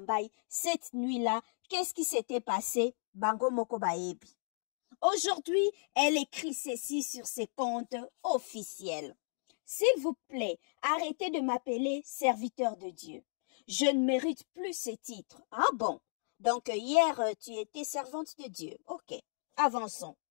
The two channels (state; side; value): silent; right; digital silence